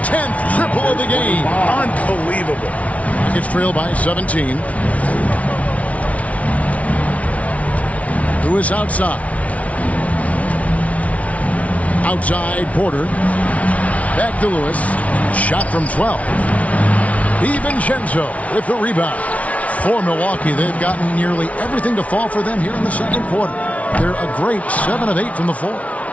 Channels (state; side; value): late; right; 0.067 ms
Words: 10th triple of the game. Unbelievable. Rockets trail by 17. Lewis outside. Outside Porter. Back to Lewis. Shot from 12. DiVincenzo with the rebound. For Milwaukee, they've gotten nearly everything to fall for them here in the second quarter. They're a great 7 of 8 from the floor.